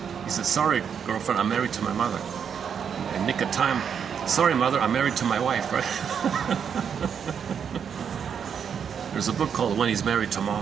He said, sorry, girlfriend, I'm married to my mother. In nick of time, sorry, mother, I'm married to my wife, right? There's a book called When He's Married to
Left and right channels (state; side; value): quieter; left; 7.4 dB